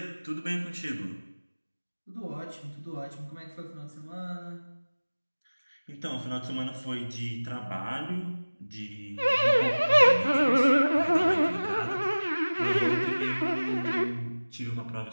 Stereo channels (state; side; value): inverted; both; correlation -1.00